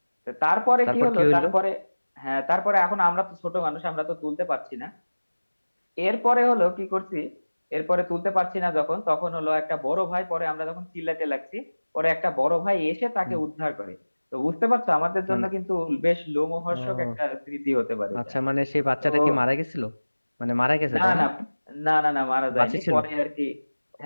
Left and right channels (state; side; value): inverted; both; correlation -1.00